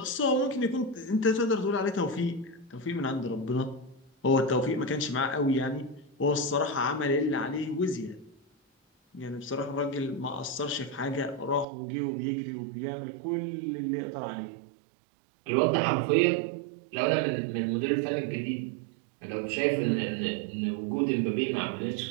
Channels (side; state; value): left; drops out; at 11.7 s